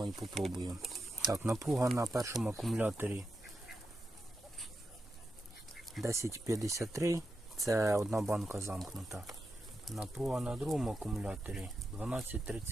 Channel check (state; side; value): normal; both; correlation 0.87